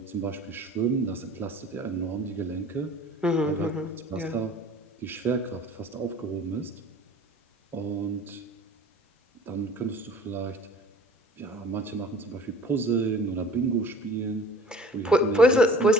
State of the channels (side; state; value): both; normal; correlation 0.47